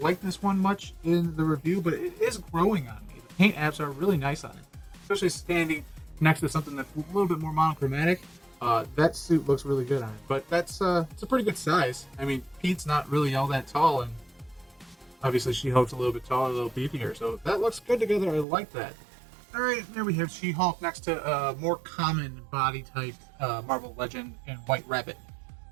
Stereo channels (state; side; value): drops out; left; at 18.4 s